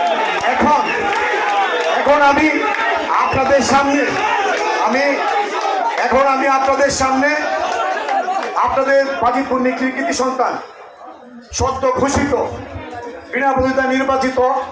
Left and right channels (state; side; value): identical; both; correlation 1.00